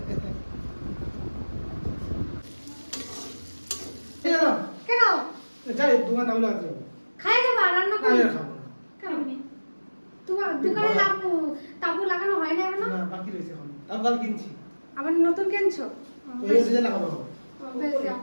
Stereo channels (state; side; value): inverted; both; correlation -1.00